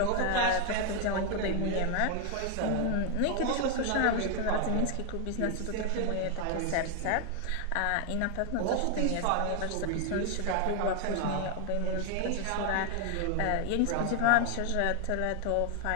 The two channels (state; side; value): different; both; correlation 0.01